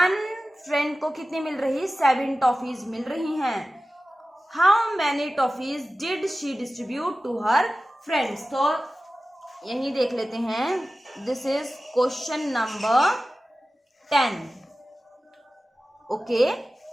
फ्रेंड को कितनी मिल रही, 7 टॉफीज मिल रही हैं। How many toffees did she distribute to her friends. तो यही देख लेते हैं। This is question number 10। Okay.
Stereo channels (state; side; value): normal; both; correlation 0.95